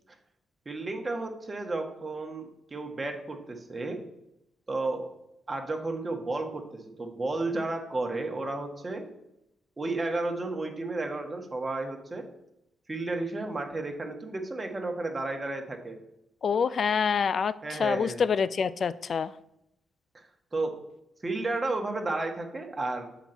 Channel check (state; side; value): normal; both; correlation 0.83